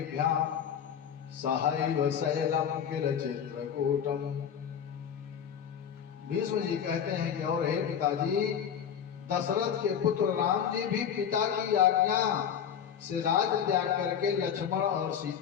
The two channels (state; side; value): quieter; right; 8.3 dB